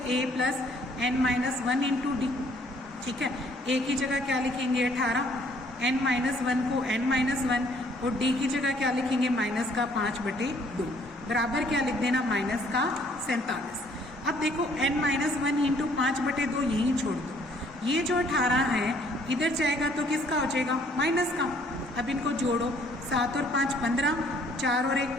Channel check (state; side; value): normal; both; correlation 0.62